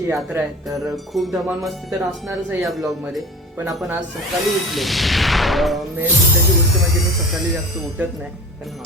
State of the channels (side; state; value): both; normal; correlation 0.37